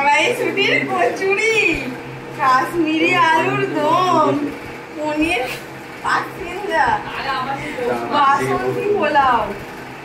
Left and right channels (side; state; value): both; identical; correlation 1.00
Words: কচুরি, কাশ্মীরি আলুর দম, পনির পাখিন্দা, বাসন্তী পোলাও,